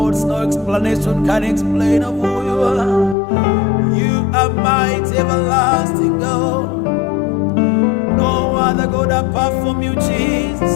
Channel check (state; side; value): drops out; right; at 3.2 s